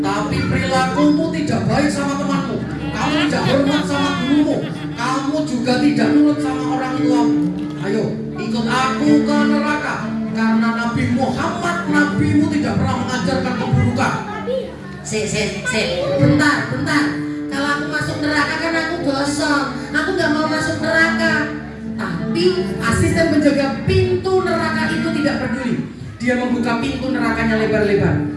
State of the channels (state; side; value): identical; both; correlation 1.00